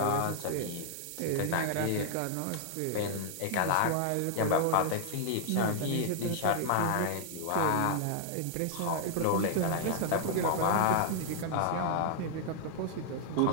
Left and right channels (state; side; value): different; both; correlation -0.01